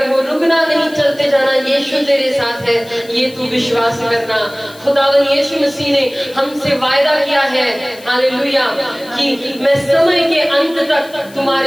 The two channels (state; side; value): noise; left; hiss, 22 dB below the sound